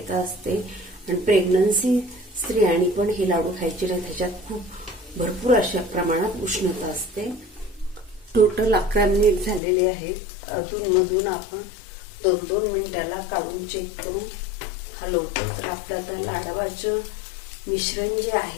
असते. आणि प्रेग्नन्सी स्त्रियांनी पण हे लाडू खायचे नाही. त्याच्यात खूप भरपूर अशा प्रमाणात उष्णता असते. टोटल 11 मिनिट झालेले आहेत. अधूनमधून आपण 2-2 मिनिटाला काढून चेक करून हलवतो. तर आपलं आता लाडवाचं मिश्रण जे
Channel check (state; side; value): drops out; right; at 9.6 s